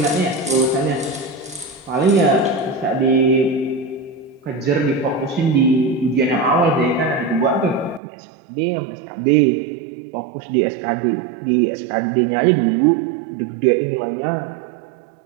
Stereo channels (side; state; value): left; drops out; at 8.0 s